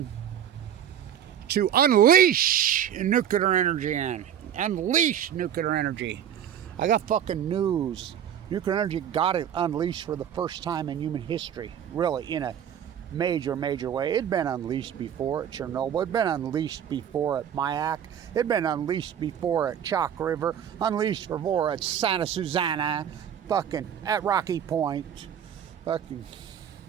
to unleash nuclear energy unleash nuclear energy. I got fucking news. Nuclear energy got it unleashed for the first time in human history, really, in a major way. It'd been unleashed before at Chernobyl. It'd been unleashed before at Mayak. It'd been unleashed before at Chalk River. Unleashed before at Santa Susana. Fucking at Rocky Point. Fucking.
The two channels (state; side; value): quieter; left; 9.4 dB